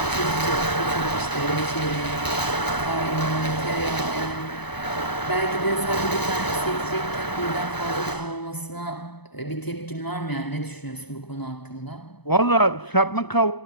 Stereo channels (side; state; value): right; late; 0.99 ms